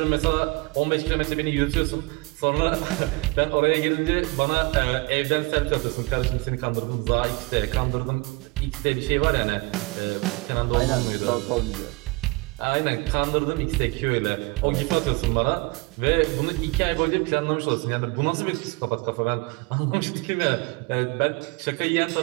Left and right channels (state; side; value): quieter; left; 25.6 dB